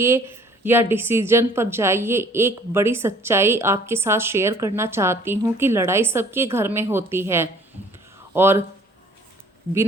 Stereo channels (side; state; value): both; normal; correlation 0.55